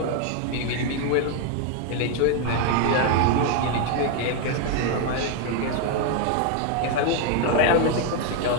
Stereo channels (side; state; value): both; different; correlation 0.01